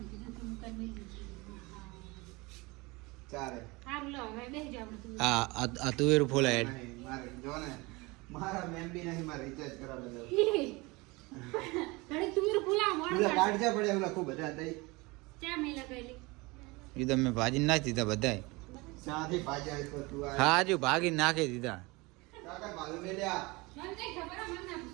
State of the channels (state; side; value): quieter; left; 24.4 dB